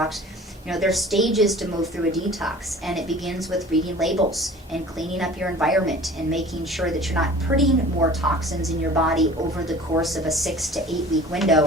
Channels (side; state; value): both; normal; correlation 0.44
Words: You know, there's stages to move through a detox, and it begins with reading labels and cleaning up your environment and making sure that you're not putting more toxins in your body over the course of a 6 to 8 week